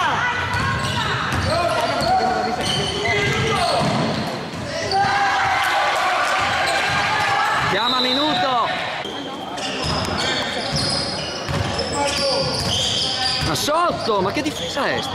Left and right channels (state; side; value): identical; both; correlation 1.00